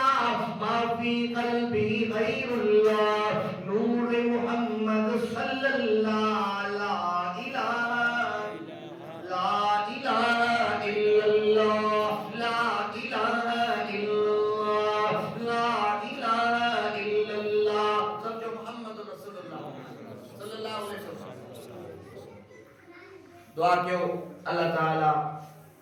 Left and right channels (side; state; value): both; identical; correlation 1.00